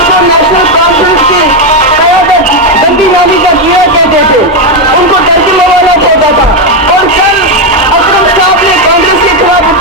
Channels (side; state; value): both; normal; correlation 0.06